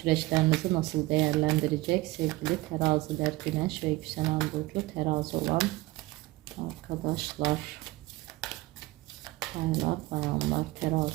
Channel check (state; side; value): quieter; left; 20.0 dB